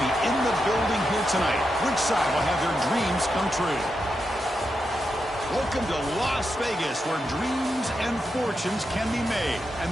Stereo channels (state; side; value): normal; both; correlation 0.86